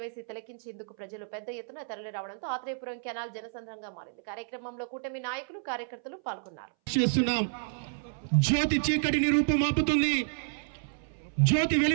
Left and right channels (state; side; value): silent; left; 57 dB below the other